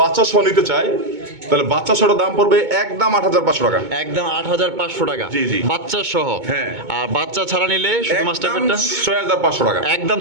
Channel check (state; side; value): late; left; 2.2 ms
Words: বাচ্চা সহ নিতে চায় তাহলে বাচ্চা সহটার দাম পড়বে একদম 8,500 টাকা। একদম 8,500 টাকা। জি, জি। বাচ্চা সহ। হ্যাঁ। আর বাচ্চা ছাড়া নিলে শুধু মাস্টার একদম পেটটা 6,500 টাকা। একদম